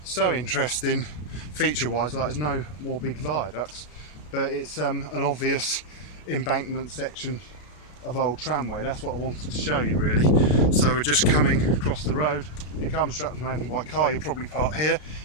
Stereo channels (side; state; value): right; late; 33 ms